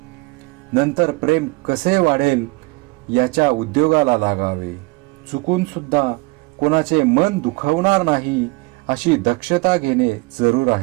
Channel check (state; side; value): quieter; left; 25.3 dB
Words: नंतर प्रेम कसे वाढेल याच्या उद्योगाला लागावे. चुकून सुद्धा कोणाचे मन दुखावणार नाही अशी दक्षता घेणे जरूर